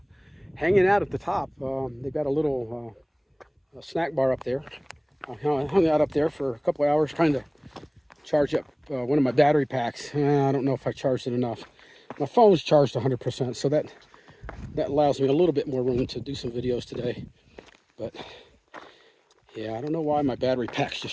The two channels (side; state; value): both; identical; correlation 1.00